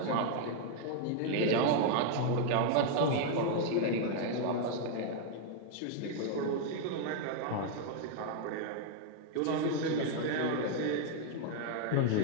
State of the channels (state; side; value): different; both; correlation 0.00